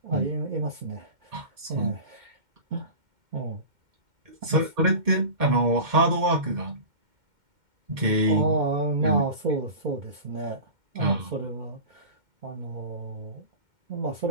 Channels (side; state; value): left; late; 2.1 ms